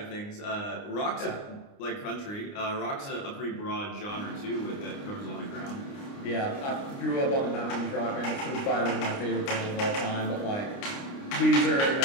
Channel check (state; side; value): late; right; 29 ms